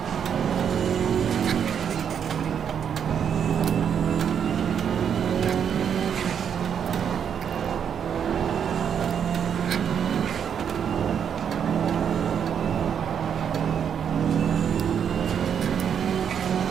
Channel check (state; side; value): quieter; left; 8.0 dB